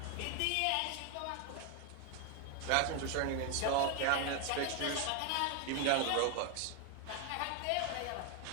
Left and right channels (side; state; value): both; different; correlation 0.01